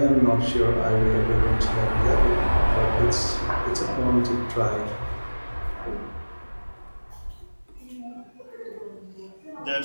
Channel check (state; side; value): inverted; both; correlation -1.00